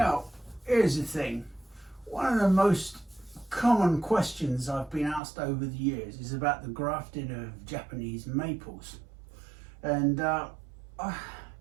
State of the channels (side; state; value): left; drops out; at 5.2 s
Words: here's the thing. One of the most common questions I've been asked over the years is about the grafting of Japanese maples. And I'm